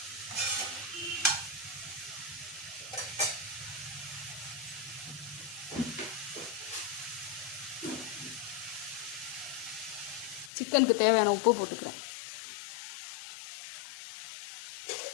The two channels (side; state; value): right; drops out; at 10.5 s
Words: சிக்கனுக்கு தேவையான உப்பு போட்டுக்கிறேன்.